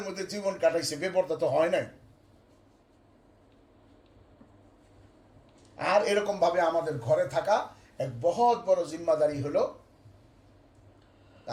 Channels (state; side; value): identical; both; correlation 1.00